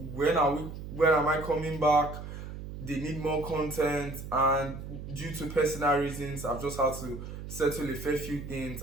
when am I coming back? They need more content, and due to personal reasons I've just had to settle a fair few things,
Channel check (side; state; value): right; noise; hum, 10 dB below the sound